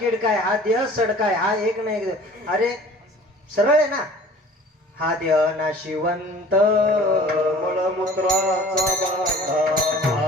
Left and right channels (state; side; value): normal; both; correlation 0.47